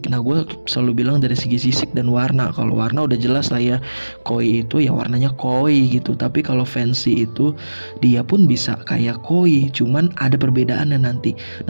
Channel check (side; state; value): both; inverted; correlation -1.00